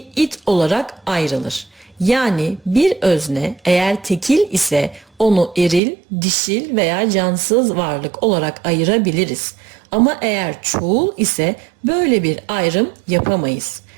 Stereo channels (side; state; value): left; drops out; at 5.8 s